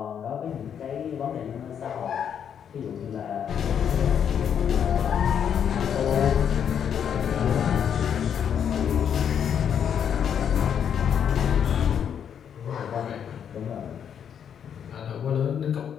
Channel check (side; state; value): right; quieter; 8.3 dB